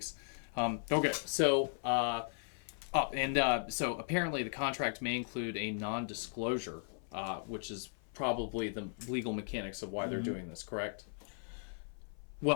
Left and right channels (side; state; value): right; silent; 53 dB below the other